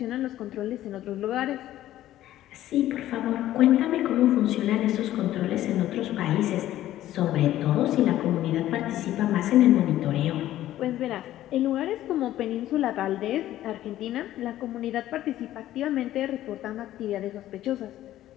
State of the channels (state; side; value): quieter; right; 13.6 dB